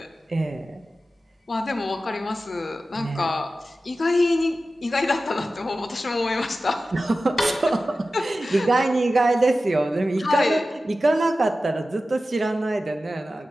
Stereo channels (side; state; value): both; normal; correlation 0.94